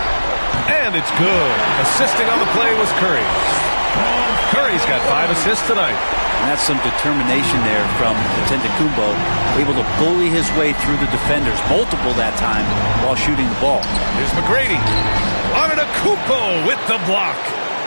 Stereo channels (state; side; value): inverted; both; correlation -1.00